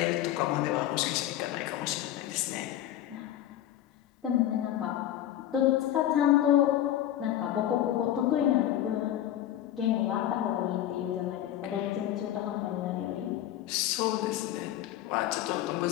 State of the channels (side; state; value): right; quieter; 12.3 dB